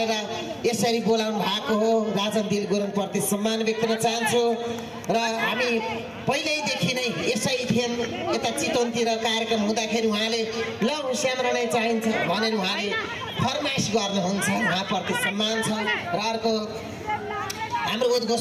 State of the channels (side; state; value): both; identical; correlation 1.00